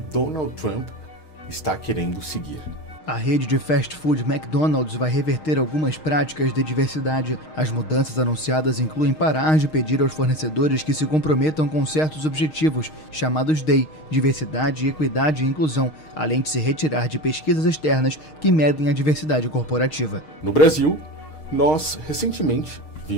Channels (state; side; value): late; right; 6.4 ms